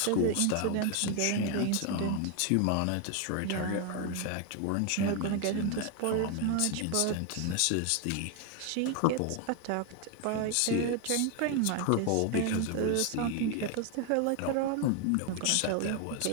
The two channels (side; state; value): both; different; correlation 0.01